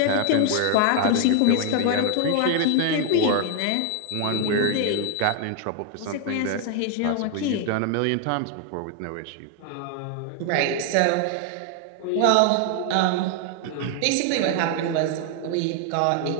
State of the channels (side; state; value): both; different; correlation 0.00